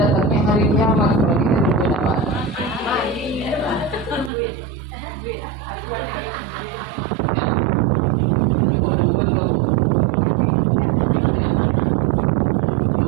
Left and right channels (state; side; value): drops out; left; at 4.3 s